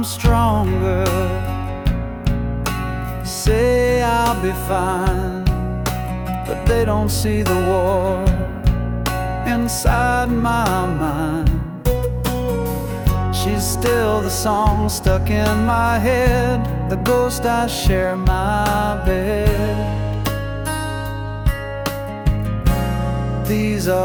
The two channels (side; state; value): both; identical; correlation 1.00